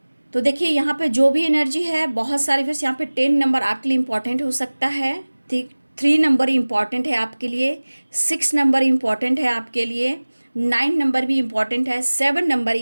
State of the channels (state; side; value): inverted; both; correlation -1.00